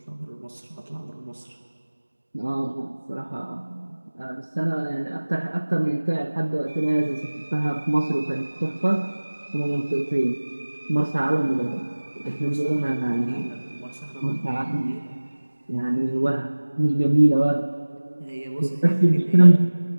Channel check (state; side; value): inverted; both; correlation -1.00